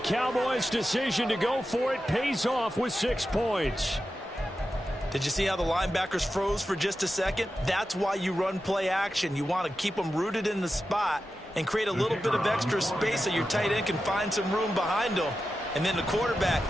decision to go for it pays off with 6 points. Did you see how the linebackers froze for just a second? That's why you run play action. You want to keep them rooted in the spot and create a little bit of extra space so your tight end can find some room behind them. And then the quarterback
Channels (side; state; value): both; normal; correlation 0.91